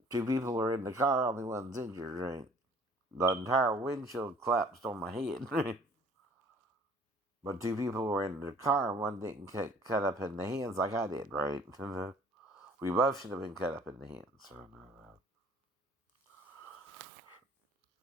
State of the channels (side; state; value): both; normal; correlation 0.54